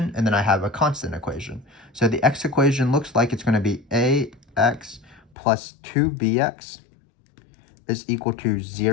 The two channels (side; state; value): right; drops out; at 5.2 s